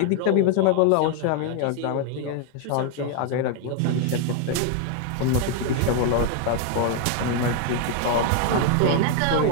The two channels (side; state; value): both; different; correlation 0.00